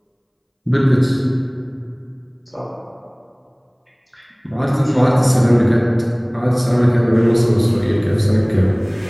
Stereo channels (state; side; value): identical; both; correlation 1.00